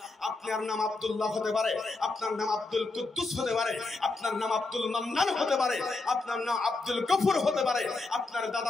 আপনার নাম আব্দুল্লাহ হতে পারে, আপনার নাম আব্দুল কুদ্দুস হতে পারে, আপনার নাম আব্দুল মান্নান হতে পারে, আপনার নাম আব্দুল গফুর হতে পারে, আপনার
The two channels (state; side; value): quieter; right; 3.4 dB